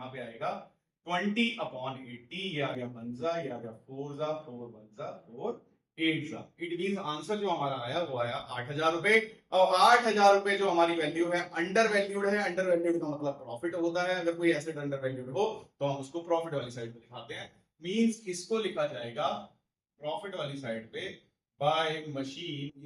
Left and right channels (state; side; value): identical; both; correlation 1.00